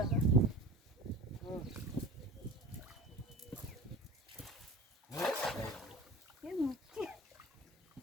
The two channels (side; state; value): both; normal; correlation 0.36